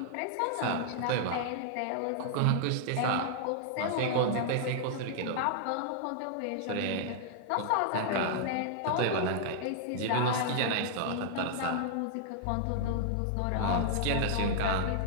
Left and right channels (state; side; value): different; both; correlation -0.01